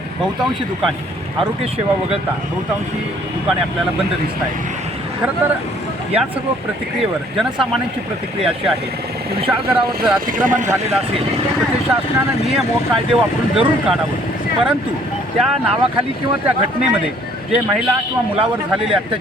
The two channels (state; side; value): normal; both; correlation 0.60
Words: बहुतांशी दुकाने, आरोग्य सेवा वगळता बहुतांशी दुकाने आपल्याला बंद दिसत आहेत। खरं तर या सर्व प्रतिक्रियेवर जनसामान्यांची प्रतिक्रिया अशी आहे की विशाळगडावर जर अतिक्रमण झालेलं असेल तर ते शासनानं नियम व कायदे वापरून जरूर काढावं, परंतु त्या नावाखाली किंवा त्या घटनेमध्ये जे महिला किंवा मुलावर झालेले